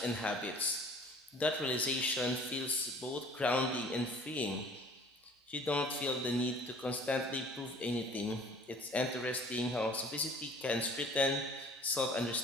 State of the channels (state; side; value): normal; both; correlation 0.50